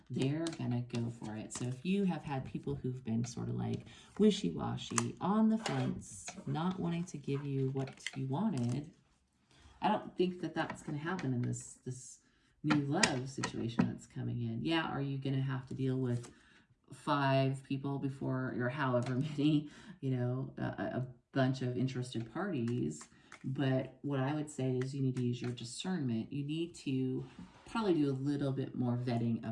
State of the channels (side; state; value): both; identical; correlation 1.00